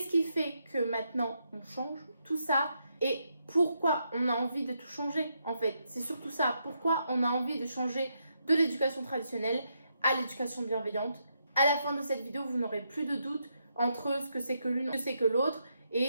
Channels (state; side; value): inverted; both; correlation -0.80